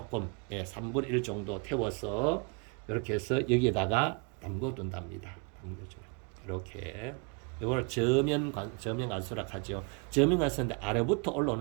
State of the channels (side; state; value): left; quieter; 33.6 dB